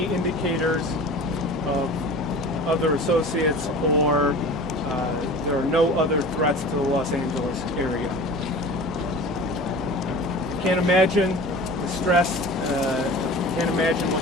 indicators of other associates, or there are no other threats to the Los Angeles area. Can't imagine the stress, can't imagine what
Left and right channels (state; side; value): normal; both; correlation 0.38